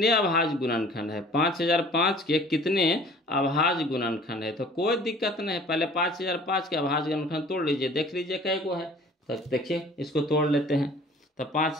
अभाज्य गुणनखंड है? 5005 के कितने अभाज्य गुणनखंड है? तो कोई दिक्कत नहीं है, पहले 5005 के अभाज्य गुणनखंड तोड़ लीजिए, देख लीजिए कै गो है। तो देखिए इसको तोड़ लेते हैं। तो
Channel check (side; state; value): both; normal; correlation 0.49